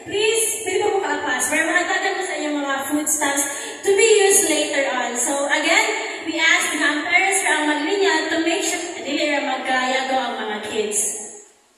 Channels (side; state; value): both; identical; correlation 1.00